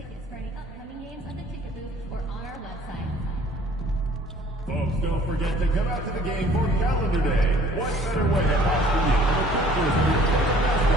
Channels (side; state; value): both; normal; correlation 0.54